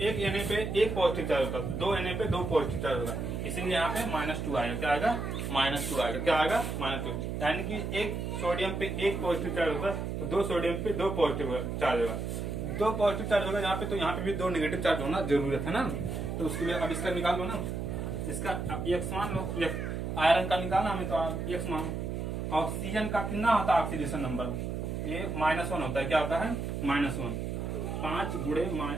एक Na पे 1 पॉजिटिव चार्ज होगा, 2 Na पे 2 पॉजिटिव चार्ज होगा, इसीलिए यहाँ पे -2 आएगा। क्या आएगा? -2 आएगा। क्या आएगा? -2। यानी कि एक सोडियम पे 1 पॉजिटिव चार्ज होगा तो 2 सोडियम पे 2 पॉजिटिव चार्ज होगा। 2 पॉजिटिव चार्ज होगा यहाँ पे, तो यहाँ पे भी 2 नेगेटिव चार्ज होना जरूरत है ना। तो उसके लिए अब इसका निकाल लो ना, इसका X मान लो। आयरन का निकालना हमें तो X मान। ऑक्सीजन का कितना होता है ऑक्सीडेशन नंबर? ये -1 होता है। क्या होता है? -1। 5 गुणे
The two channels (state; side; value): noise; right; hum, 3 dB below the sound